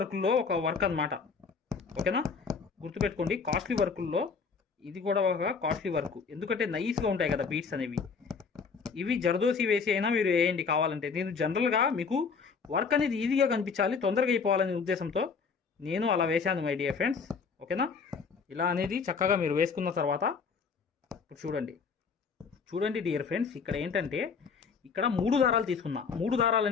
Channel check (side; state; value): right; quieter; 5.5 dB